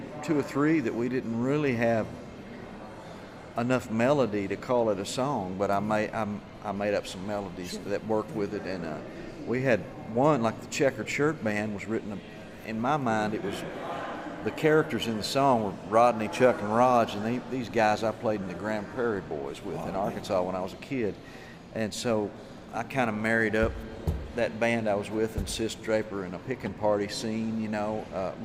two or three that we didn't really have enough melody to call it a song, but I made up some melodies that worked with it, and we had one, like the Checkered Shirt Band was written, in my mind, it was the characters in the song were Rodney, Chuck, and Raj, and these guys I played in the Grand Prairie Boys with in Arkansas when I was a kid. And so I kind of married up that band I was with and Sis Draper in a picking party scene, you know,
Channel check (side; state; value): both; identical; correlation 1.00